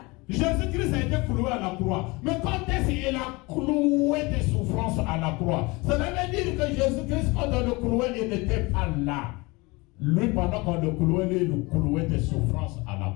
Jésus-Christ a été cloué à la croix. Mais quand est-ce qu'il a cloué des souffrances à la croix? Cela veut dire que Jésus-Christ, quand on le clouait, il n'était pas là. Lui, pendant qu'on le clouait, lui, il clouait des souffrances à la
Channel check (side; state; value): right; quieter; 24.7 dB